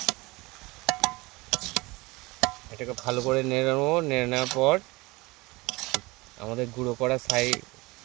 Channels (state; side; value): quieter; left; 23.0 dB